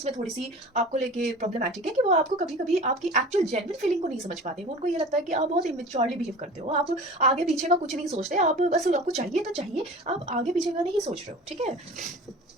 में थोड़ी सी आपको लेके प्रॉब्लमैटिक है कि वो आपको कभी कभी आपकी एक्चुअल जेन्युइन फीलिंग को नहीं समझ पाते। वो उनको ये लगता है कि आप बहुत इमेच्योरली बिहेव करते हो, आप आगे पीछे का कुछ नहीं सोचते, आप बस आपको चाहिए तो चाहिए, आप आगे पीछे का नहीं सोच रहे हो, ठीक है।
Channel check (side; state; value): both; normal; correlation 0.39